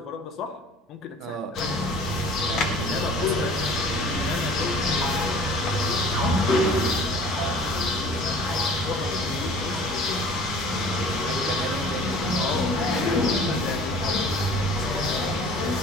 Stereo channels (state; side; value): normal; both; correlation 0.46